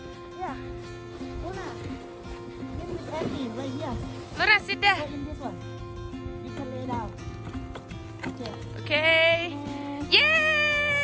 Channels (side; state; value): both; identical; correlation 1.00